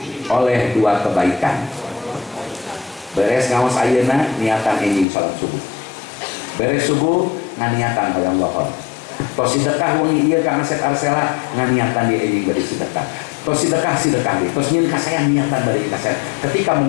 oleh dua kebaikan. Beres ngaos ayeuna niatan enjing salat subuh. Beres subuh nganiatan hoyong lohor. Tos sedekah wengi ieu ka aset arsela nganiatan di enjing bari sedekah. Tos sedekah deui. Tos nyieun ka saya niatan bari ka saya. Ketika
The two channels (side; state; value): right; drops out; at 5.1 s